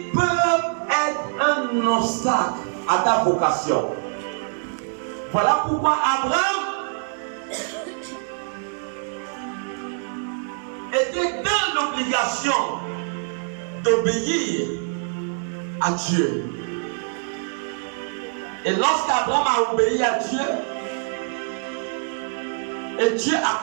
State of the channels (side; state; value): left; silent; digital silence